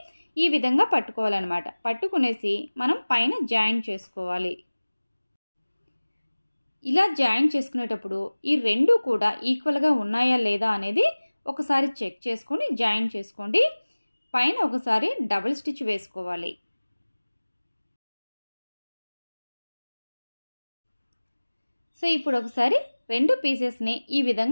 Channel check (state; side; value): inverted; both; correlation -1.00